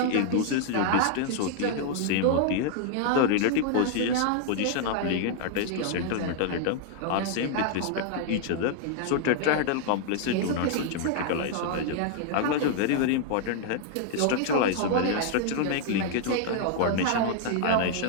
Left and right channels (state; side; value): different; both; correlation 0.00